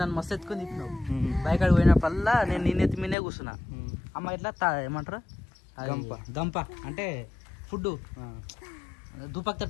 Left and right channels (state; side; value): drops out; right; at 3.2 s